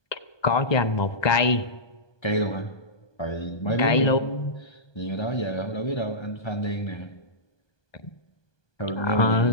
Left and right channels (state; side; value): late; right; 1.2 ms